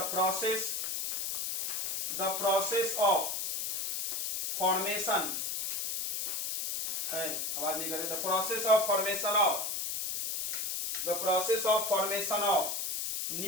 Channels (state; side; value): noise; left; hiss, 2 dB below the sound